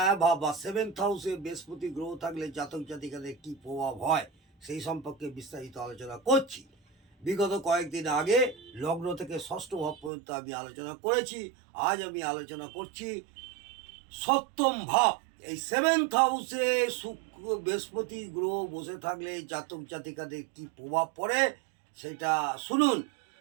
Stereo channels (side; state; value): left; drops out; at 10.1 s